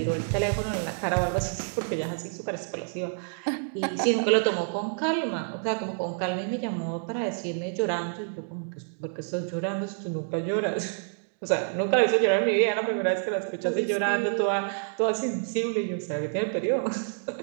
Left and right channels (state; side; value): silent; left; digital silence